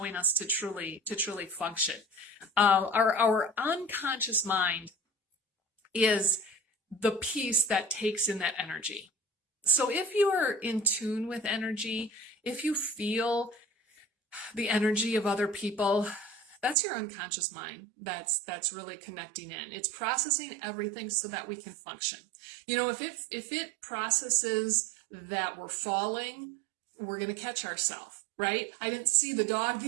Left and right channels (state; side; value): drops out; left; at 16.8 s